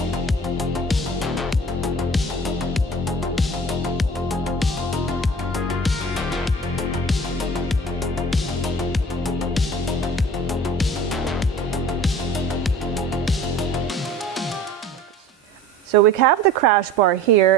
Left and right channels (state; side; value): normal; both; correlation 0.44